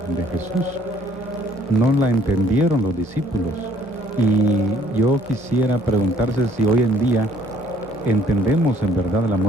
Jesús, no la entendieron los discípulos. Y yo quisiera preguntarse si hoy en día entendemos en verdad la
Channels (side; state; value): both; normal; correlation 0.61